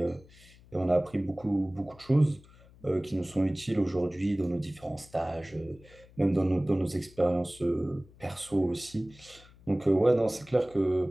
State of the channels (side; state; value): left; noise; hum, 24 dB below the sound